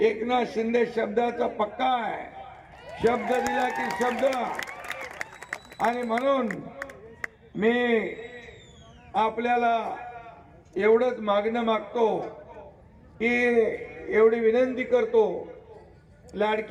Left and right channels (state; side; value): identical; both; correlation 1.00